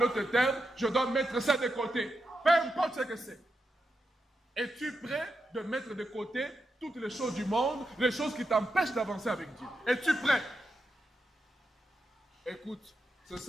termes, je dois mettre ça de côté. Peu importe ce que c'est. Es-tu prêt de mettre de côté toutes les choses du monde, les choses qui t'empêchent d'avancer avec Dieu? Es-tu prêt? Écoute, ce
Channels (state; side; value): normal; both; correlation 0.86